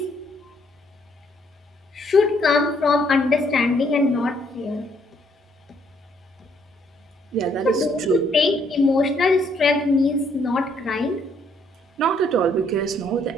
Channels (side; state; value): both; normal; correlation 0.68